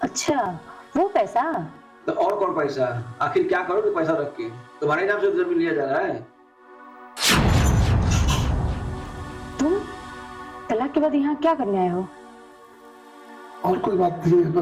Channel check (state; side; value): identical; both; correlation 1.00